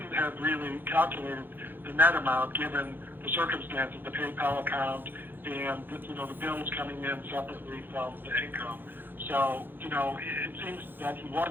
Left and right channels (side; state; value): left; late; 0.096 ms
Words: have really calculated the net amount given the circumstances, the PayPal account, and the bills coming in separately from the income. So, it seems that he